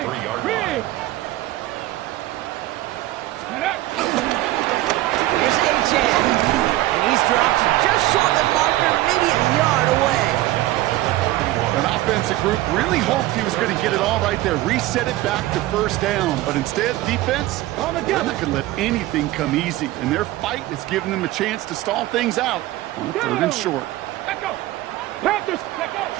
line. Here's A-Chan. And he's dropped just short of the marker, maybe a yard away. An offensive group really hoped he was going to get it all right there, reset it back to first down. But instead, defense, they're not going to let anything come easy. And their fight is giving them a chance to stall things out on the 3rd and short. Let go. Panthers, let go.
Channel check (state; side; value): quieter; left; 16.6 dB